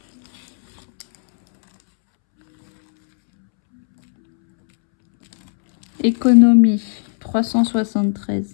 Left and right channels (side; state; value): right; silent; 69 dB below the other